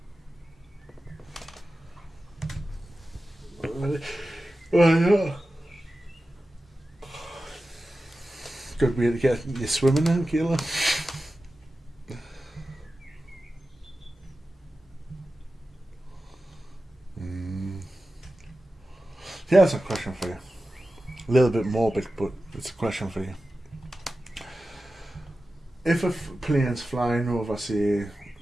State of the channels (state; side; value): normal; both; correlation 0.94